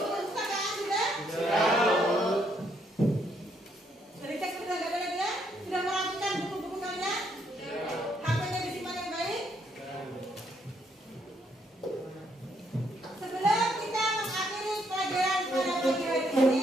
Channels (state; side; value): normal; both; correlation 0.72